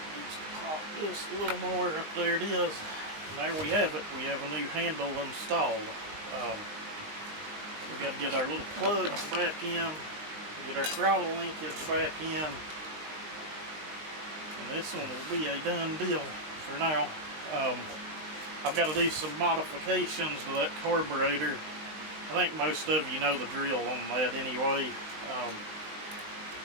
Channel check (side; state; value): left; late; 19 ms